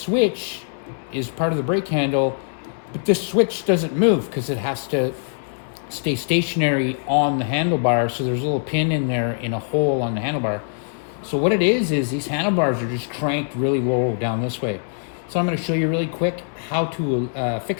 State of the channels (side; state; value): right; silent; 64 dB below the other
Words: is part of the brake handle, but this switch doesn't move because it has to stay stationary on the handlebar. So there's a little pin in there in a hole on the handlebar. So what it is these handlebars are just cranked really low down this way. So I'm going to show you really quick how to